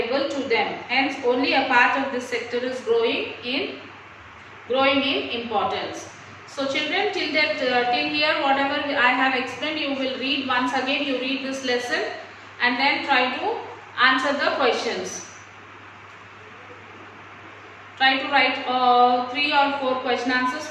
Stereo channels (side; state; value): both; identical; correlation 1.00